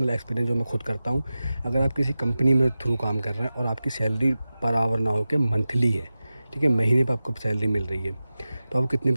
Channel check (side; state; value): both; inverted; correlation -0.95